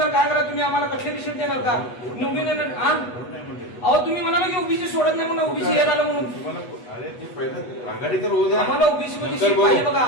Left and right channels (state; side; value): late; right; 8.2 ms